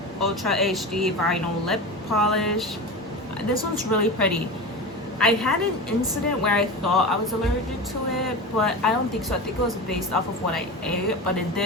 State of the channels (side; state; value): both; normal; correlation 0.27